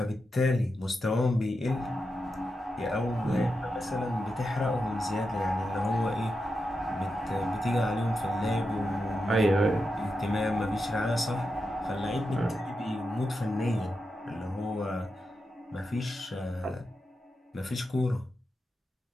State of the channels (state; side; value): normal; both; correlation 0.88